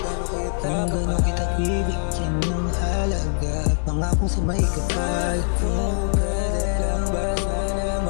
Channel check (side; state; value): right; silent; 63 dB below the other